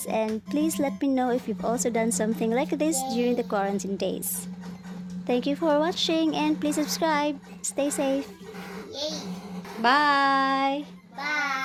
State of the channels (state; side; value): identical; both; correlation 1.00